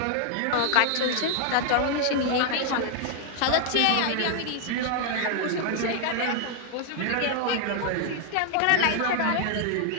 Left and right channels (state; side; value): different; both; correlation 0.00